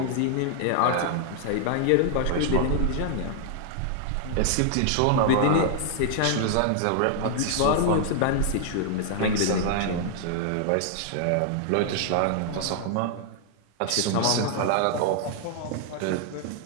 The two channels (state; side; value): different; both; correlation 0.00